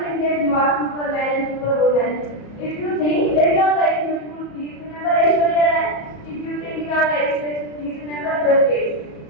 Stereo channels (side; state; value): right; late; 34 ms